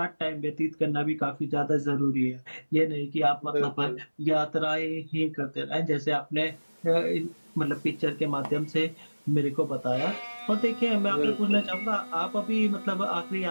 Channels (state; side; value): inverted; both; correlation -1.00